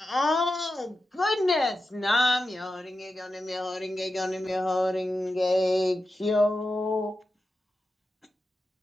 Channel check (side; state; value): both; normal; correlation 0.91